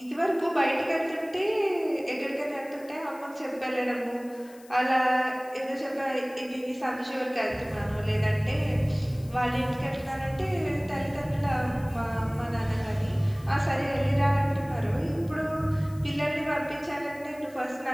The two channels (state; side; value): noise; left; hiss, 24 dB below the sound